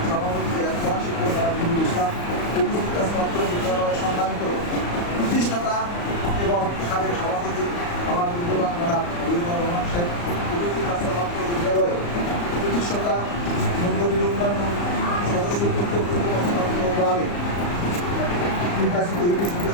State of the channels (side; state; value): right; late; 34 ms